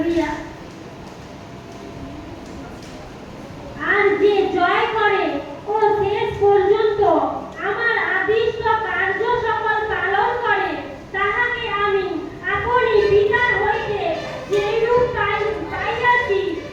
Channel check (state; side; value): identical; both; correlation 1.00